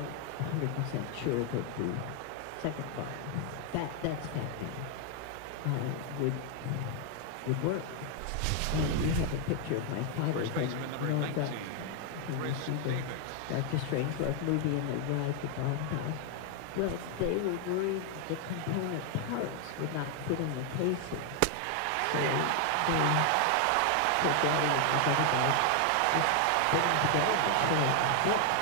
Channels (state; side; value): different; both; correlation 0.00